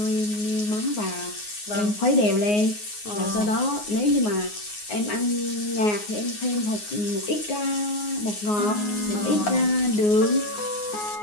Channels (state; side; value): late; right; 9.6 ms